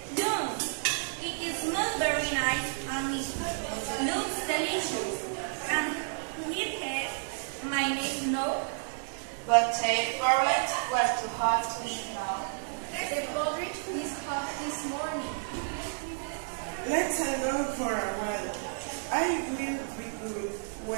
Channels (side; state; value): left; silent; digital silence